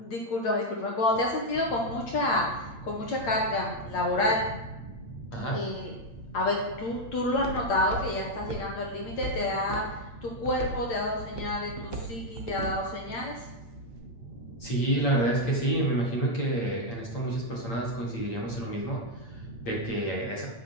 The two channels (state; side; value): late; right; 8.8 ms